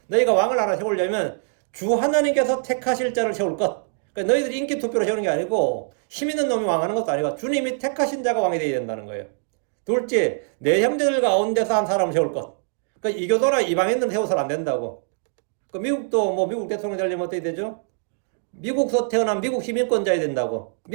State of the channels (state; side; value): silent; left; digital silence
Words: 너희가 왕을 하나 세우려면 주 하나님께서 택하실 자를 세울 것. 그러니까 너희들이 인기 투표로 세우는 게 아니고 힘 있는 놈이 왕하는 것도 아니고 주님이 택하신 자가 왕이 되어야 된다는 거예요. 둘째, 내 형제들 가운데서 한 사람을 세울 것. 그러니까 이교도나 이방인들은 세워서는 안 된다고. 그 미국도 뭐 미국 대통령 되려면 어떻게 되죠? 미국에서 태어난 미국 시민권자야 된다고.